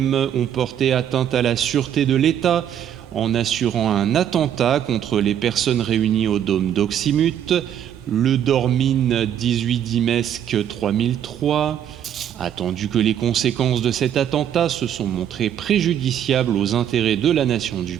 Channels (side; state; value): left; quieter; 9.8 dB